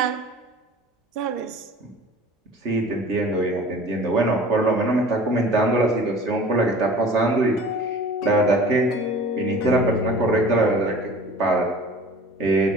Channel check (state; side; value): normal; both; correlation 0.44